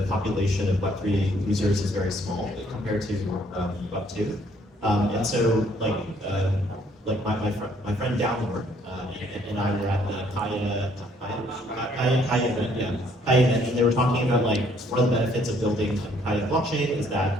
population of Web3 users is very small compared to Web2. And so, like my friend Downward and I were at the Kaya event, Kaya event, and they were talking about like one of the benefits of building Kaya blockchain is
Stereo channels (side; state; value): both; normal; correlation 0.65